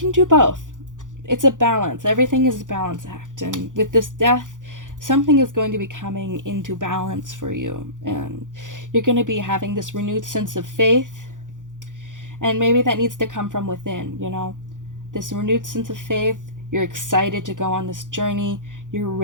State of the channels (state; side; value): late; left; 0.88 ms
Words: do both. It's a balance. Everything is a balance act, and with this death, something is going to be coming into balance for you, and you're going to be having this renewed sense of faith, and maybe that needs to come from within, you know, this renewed sense of faith. You're excited to go on this journey. You're